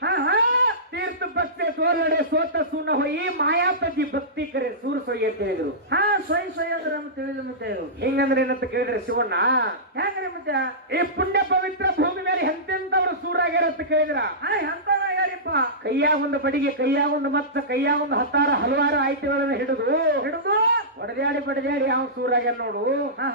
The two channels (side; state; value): both; normal; correlation -0.18